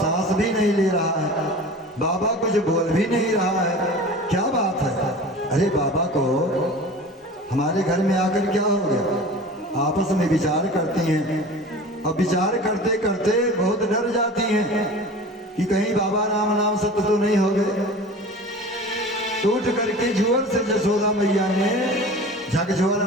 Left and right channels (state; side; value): normal; both; correlation 0.38